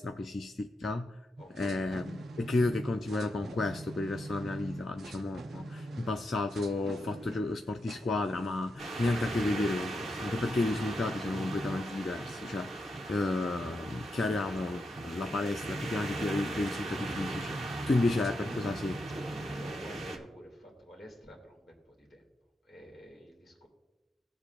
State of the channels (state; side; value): normal; both; correlation 0.85